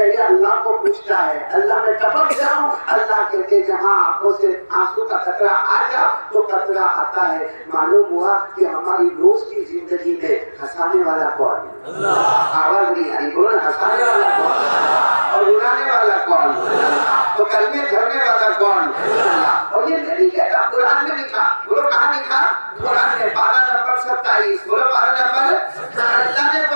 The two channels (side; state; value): both; inverted; correlation -1.00